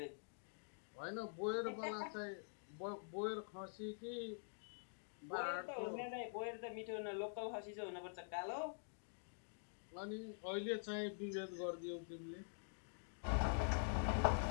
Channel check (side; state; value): right; silent; digital silence